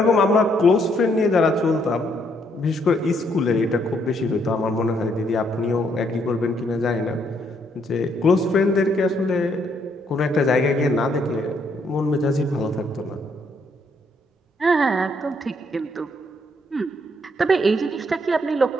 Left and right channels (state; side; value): normal; both; correlation 0.72